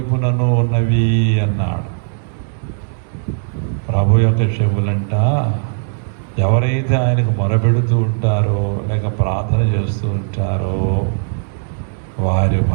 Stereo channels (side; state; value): left; silent; 66 dB below the other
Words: ఉన్నవి అన్నాడు. ప్రభు యొక్క చెవులంట ఎవరైతే ఆయనకు మొరపెడుతూ ఉంటారో లేక ప్రార్థన చేస్తూ ఉంటారో వారి